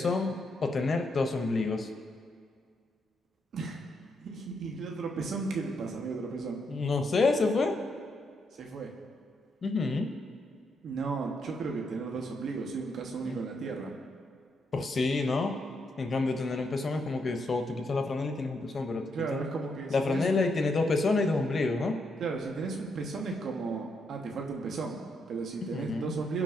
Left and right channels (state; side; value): normal; both; correlation 0.78